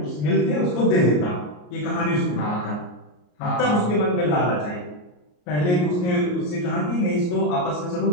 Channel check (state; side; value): late; right; 34 ms